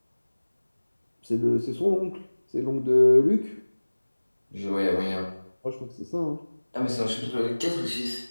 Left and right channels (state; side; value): inverted; both; correlation -1.00